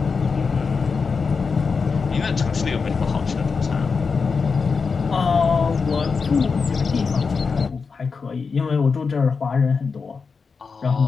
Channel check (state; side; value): quieter; right; 5.1 dB